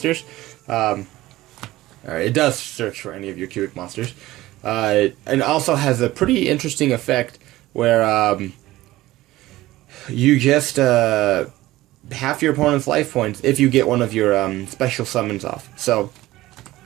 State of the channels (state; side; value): quieter; left; 17.0 dB